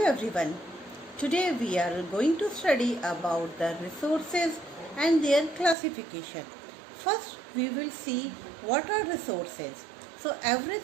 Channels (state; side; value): drops out; left; at 5.8 s